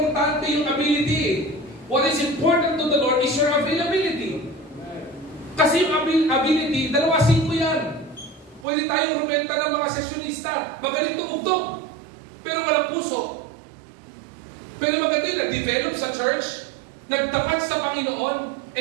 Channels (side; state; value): left; drops out; at 8.7 s